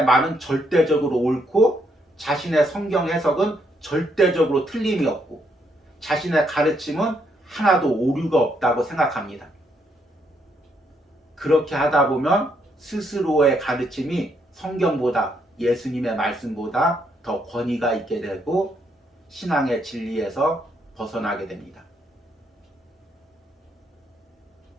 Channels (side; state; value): both; normal; correlation 0.74